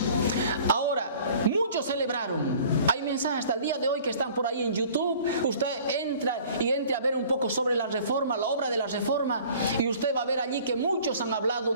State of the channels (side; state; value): both; inverted; correlation -0.49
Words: Ahora, muchos celebraron. Hay mensajes hasta el día de hoy que están por ahí en YouTube. Usted entre a ver un poco sobre la reforma, la obra de la reforma, y usted va a ver allí que muchos han hablado